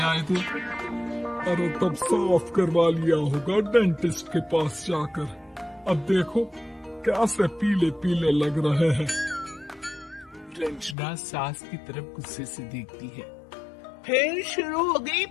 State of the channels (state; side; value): drops out; right; at 11.0 s